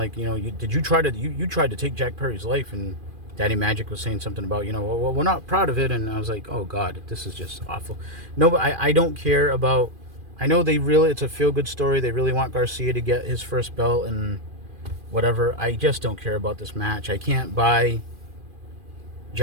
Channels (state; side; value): late; left; 2.4 ms